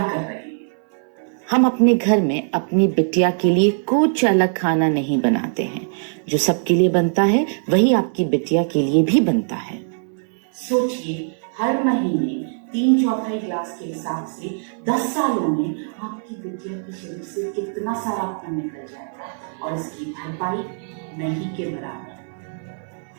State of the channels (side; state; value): left; silent; 62 dB below the other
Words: रहे हैं। हम अपने घर में अपनी बिटिया के लिए कुछ अलग खाना नहीं बनाते हैं। जो सबके लिए बनता है वही आपकी बिटिया के लिए भी बनता है। सोचिए हर महीने 3/4 ग्लास के हिसाब से 10 सालों में आपकी बिटिया के शरीर से कितना सारा खून निकल जाएगा और इसकी भरपाई नहीं के बराबर।